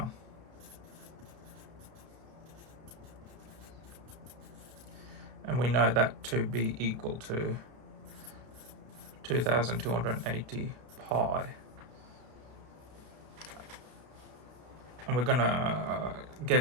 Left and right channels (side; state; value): left; late; 32 ms